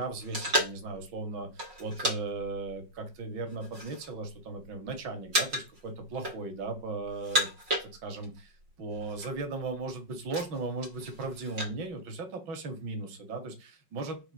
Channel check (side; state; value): left; late; 5.5 ms